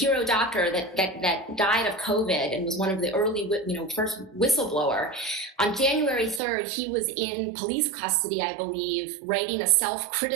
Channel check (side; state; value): left; drops out; at 6.4 s